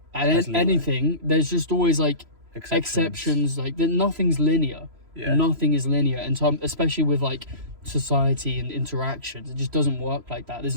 and anything, there's just always like exceptions. Like nothing's linear. Yeah. Nothing is linear, and especially with like society and interactions, it just doesn't work like that.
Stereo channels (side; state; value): left; late; 3.0 ms